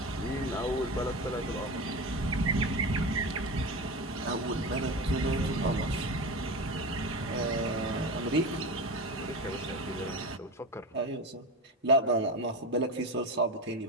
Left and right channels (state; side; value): normal; both; correlation 0.25